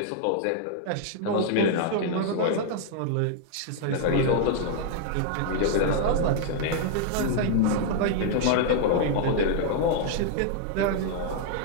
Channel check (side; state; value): both; different; correlation 0.00